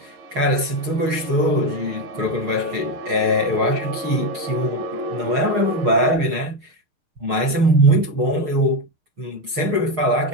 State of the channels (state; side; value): late; left; 6.3 ms